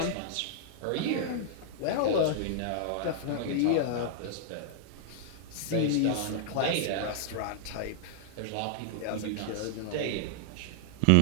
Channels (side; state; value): both; different; correlation -0.01